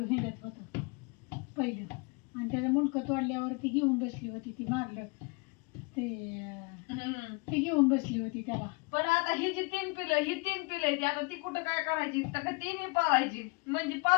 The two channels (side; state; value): right; quieter; 28.3 dB